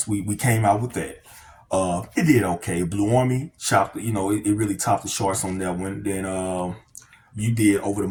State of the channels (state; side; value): identical; both; correlation 1.00